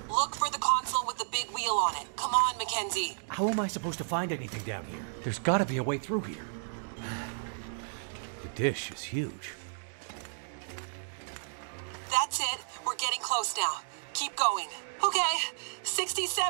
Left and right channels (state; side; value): silent; left; digital silence